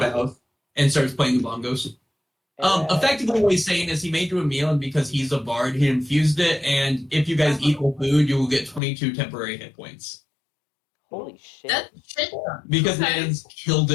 and starts playing the bongos. Effectively, what he's saying is he made you a meal, and because he's a bard, he infused it. And if you guys eat the food, you will get 22 temporary hit points. Holy shit! That shit. Because Okay. Man's killed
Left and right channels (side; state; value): right; drops out; at 8.8 s